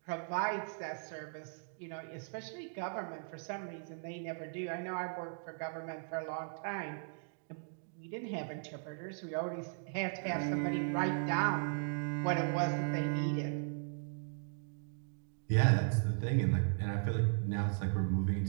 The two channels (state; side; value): silent; left; digital silence